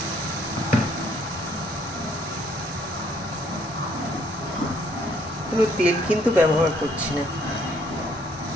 কোনো তেল কিন্তু ব্যবহার করছি না।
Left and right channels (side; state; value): both; normal; correlation 0.66